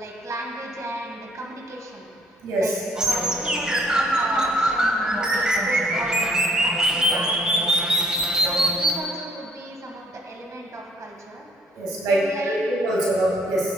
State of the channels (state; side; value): normal; both; correlation 0.62